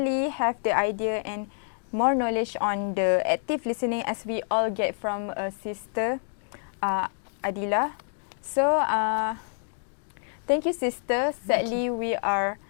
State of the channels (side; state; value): right; silent; digital silence